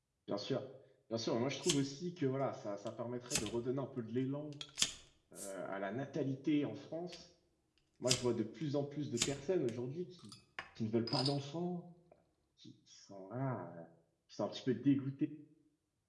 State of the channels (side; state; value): both; identical; correlation 1.00